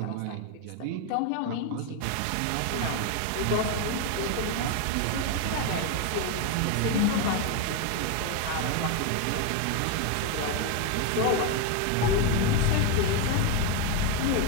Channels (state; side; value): different; both; correlation 0.02